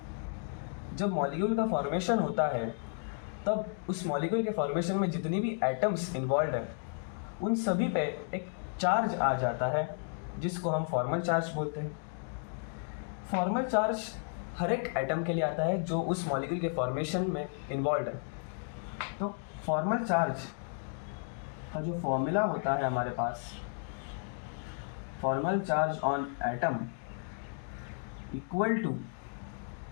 जब मॉलिक्यूल का फॉर्मेशन होता है तब उस मॉलिक्यूल के फॉर्मेशन में जितनी भी एटम्स इन्वॉल्व है उन सभी पे एक चार्ज आ जाता है जिसको हम फॉर्मल चार्ज बोलते हैं। फॉर्मल चार्ज हर एक एटम के लिए आता है जो उस मॉलिक्यूल के फॉर्मेशन में इन्वॉल्व है। तो फॉर्मल चार्ज का जो फॉर्मूला होता है हमारे पास, formal charge on atom equal to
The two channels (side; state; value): right; silent; 56 dB below the other